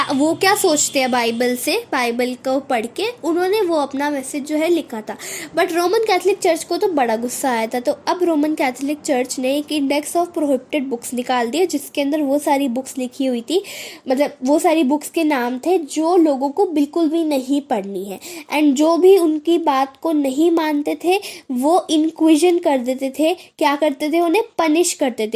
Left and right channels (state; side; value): identical; both; correlation 1.00